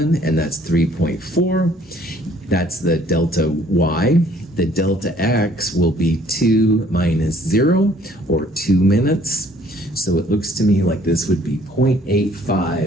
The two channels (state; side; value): normal; both; correlation 0.59